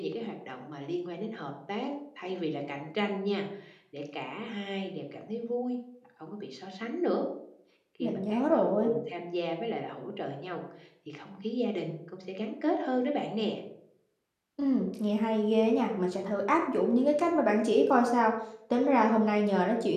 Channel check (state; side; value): identical; both; correlation 1.00